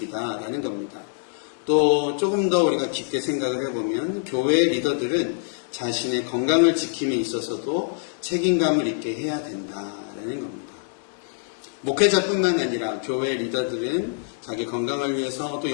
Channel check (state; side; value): silent; right; digital silence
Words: 겁니다. 또 조금 더 우리가 깊게 생각을 해보면 교회 리더들은 자신의 건강을 지킴에 있어서도 책임감을 있게 해야 된다라는 겁니다. 목회자뿐만 아니라 교회 리더들은 자기 건강을 위해서 또